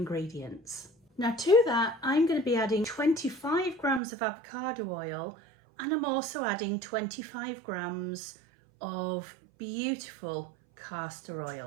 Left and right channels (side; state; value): left; drops out; at 4.0 s